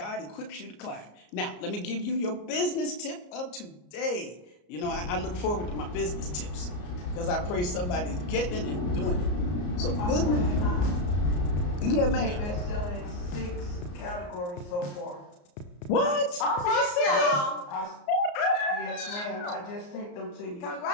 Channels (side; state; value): right; late; 34 ms